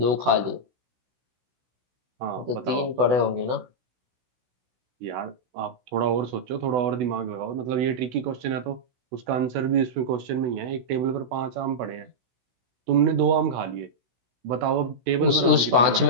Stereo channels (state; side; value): late; left; 16 ms